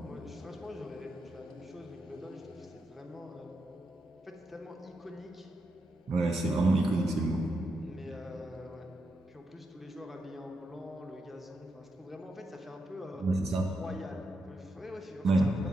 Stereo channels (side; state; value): both; normal; correlation 0.84